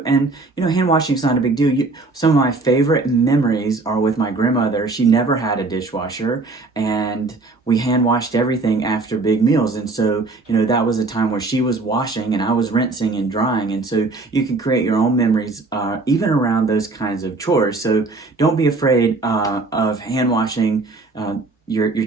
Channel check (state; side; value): quieter; left; 3.5 dB